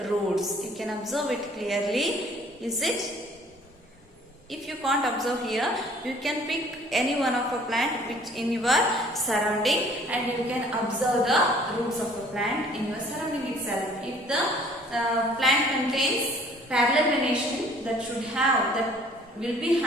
roots. You can observe it clearly. Is it? If you can't observe here, you can pick any one of a plant which in your surrounding, and you can observe the roots of the plant in your surrounding plant contains parallel venation that will be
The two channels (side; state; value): both; normal; correlation 0.55